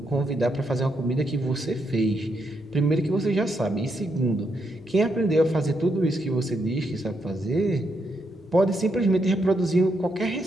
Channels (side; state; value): both; normal; correlation 0.79